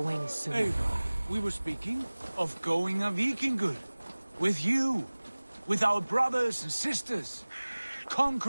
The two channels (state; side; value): inverted; both; correlation -1.00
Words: wings soon. Eivor, we were speaking of going a Vikingur. With you. With our brothers and sisters.